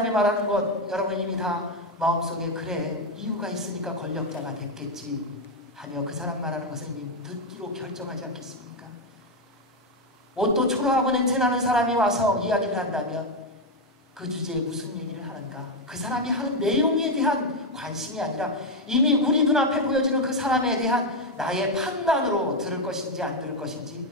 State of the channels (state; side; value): normal; both; correlation 0.06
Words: 말하는 것 여러분 이미 다 마음속에 그래 이유가 있으니까 권력자가 됐겠지 하며 그 사람 말하는 것을 이미 듣기로 결정하지 않겠습니까? 옷도 초라하고 냄새나는 사람이 와서 이야기를 한다면 그 주제에 무슨 얘기를 하는가? 그 사람이 하는 내용에 대한 관심이 아니라 이미 우리 눈앞에 보여지는 그 사람에 대한 나의 판단으로 들을 것인지 안 들을 것인지